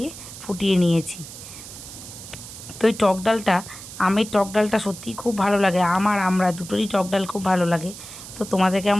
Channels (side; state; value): right; noise; hiss, 13 dB below the sound